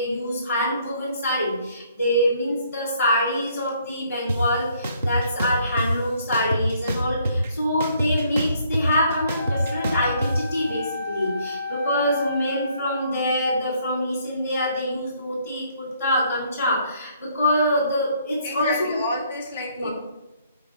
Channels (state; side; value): inverted; both; correlation -0.66